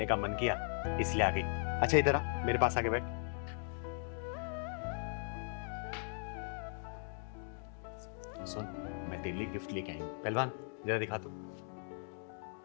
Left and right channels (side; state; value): right; silent; 52 dB below the other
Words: का मन किया इसलिए आ गई। अच्छा इधर आ, मेरे पास आके बैठ। सुन, मैं तेरे लिए गिफ्ट लेके आई हूँ। पहलवान जरा दिखा तू,